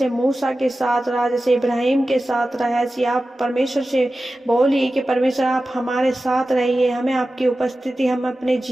मूसा के साथ रहा, जैसे इब्राहिम के साथ रहा, ऐसी आप परमेश्वर से बोलिए कि परमेश्वर आप हमारे साथ रहिए। हमें आपकी उपस्थिति हम अपने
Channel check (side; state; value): both; normal; correlation 0.94